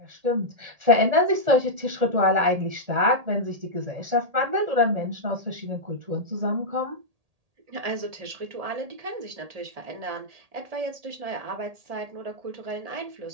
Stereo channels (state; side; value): late; left; 1.8 ms